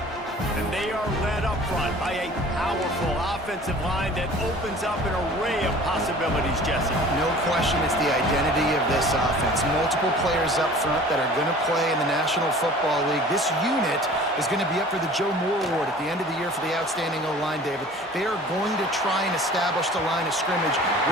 And they are led up front by a powerful offensive line that opens up an array of possibilities, Jesse. No question it's the identity of this offense. Multiple players up front that are going to play in the National Football League. This unit is going to be up for the Joe Moore Award at the end of the year for the outstanding O-line, David. They are going to try and establish the line of scrimmage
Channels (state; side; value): normal; both; correlation 0.46